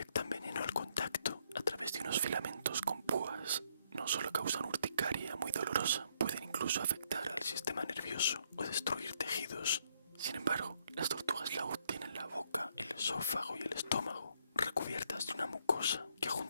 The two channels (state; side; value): inverted; both; correlation -0.71